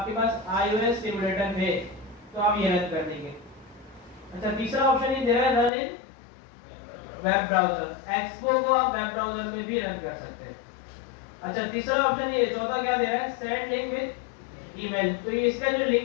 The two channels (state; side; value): drops out; right; at 5.7 s